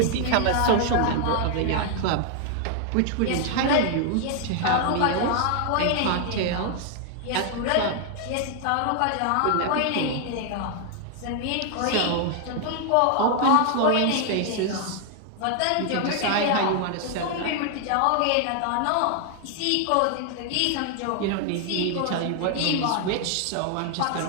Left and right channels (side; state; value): both; different; correlation 0.00